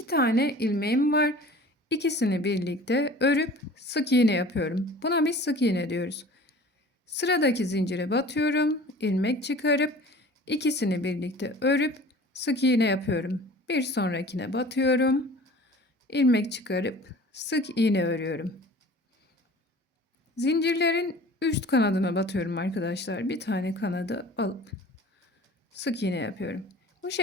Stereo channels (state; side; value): normal; both; correlation 0.44